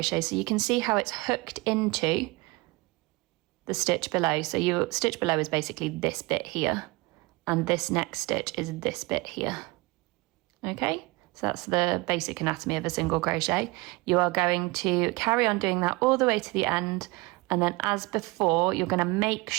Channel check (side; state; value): left; quieter; 23.9 dB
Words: So you can see how it's hooked into the stitch below. So your stitch below is basically this bit here, and this next stitch is this bit here. Okay, so that's the basic anatomy of a single crochet. You are going to carry on doing that all the way to the end, and then as before, you're going to make